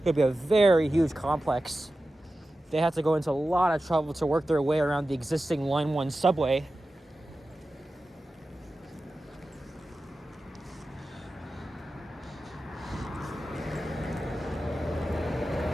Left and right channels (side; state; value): both; normal; correlation 0.93